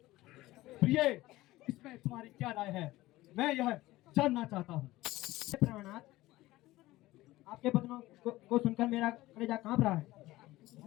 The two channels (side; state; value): right; quieter; 17.6 dB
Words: प्रिय, इसमें तुम्हारी क्या राय है, मैं यह जानना चाहता हूँ। प्रणाम, आपके वचनों को सुनकर मेरा कलेजा कांप रहा है।